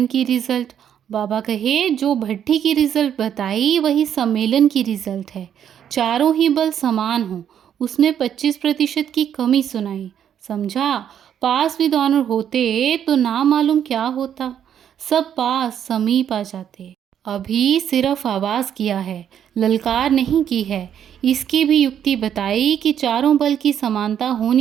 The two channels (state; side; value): quieter; left; 9.2 dB